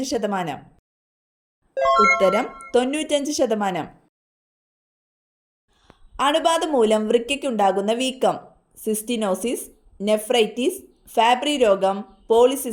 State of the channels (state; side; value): identical; both; correlation 1.00